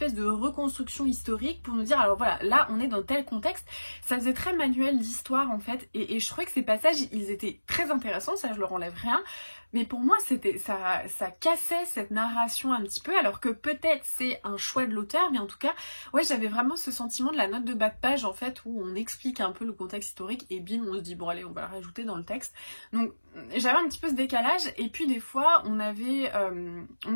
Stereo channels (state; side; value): inverted; both; correlation -1.00